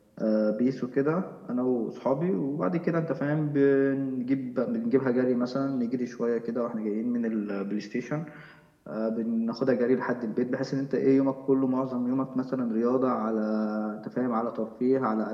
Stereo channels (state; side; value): identical; both; correlation 1.00